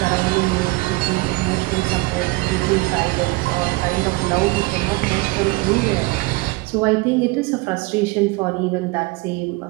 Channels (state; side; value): quieter; left; 23.2 dB